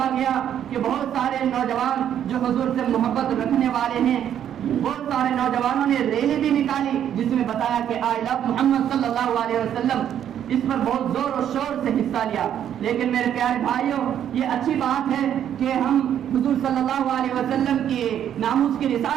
گیا کہ بہت سارے نوجوان جو حضور سے محبت رکھنے والے ہیں، بہت سارے نوجوانوں نے ریلی بھی نکالی جس میں بتایا کہ آئی لو محمد صلی اللہ علیہ وسلم. اس پر بہت زور و شور سے حصہ لیا. لیکن میرے پیارے بھائیوں، یہ اچھی بات ہے کہ ہم حضور صلی اللہ علیہ وسلم کے ناموس کی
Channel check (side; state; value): left; quieter; 9.9 dB